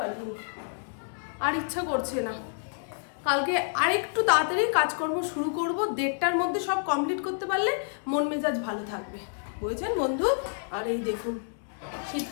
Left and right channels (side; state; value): right; silent; digital silence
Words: আর ইচ্ছা করছে না। কালকে আরেকটু তাড়াতাড়ি কাজকর্ম শুরু করব, 1:30টার মধ্যে সব কমপ্লিট করতে পারলে মন মেজাজ ভালো থাকবে, বুঝেছেন বন্ধু? আর এই দেখুন